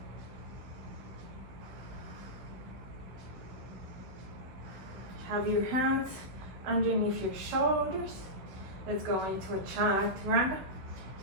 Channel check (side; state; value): left; late; 16 ms